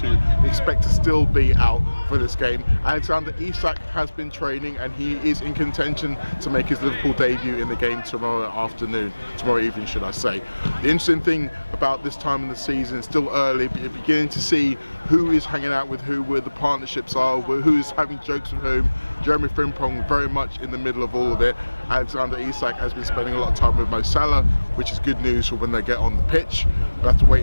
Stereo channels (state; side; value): inverted; both; correlation -1.00